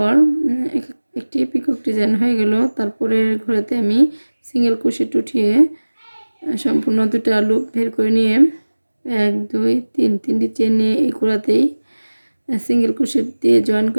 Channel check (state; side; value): inverted; both; correlation -1.00